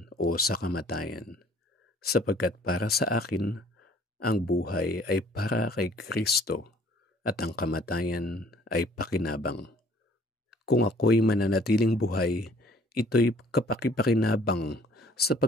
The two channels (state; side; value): normal; both; correlation 0.56